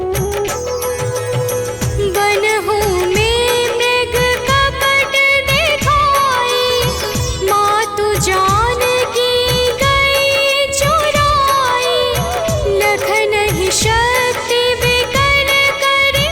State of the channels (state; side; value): identical; both; correlation 1.00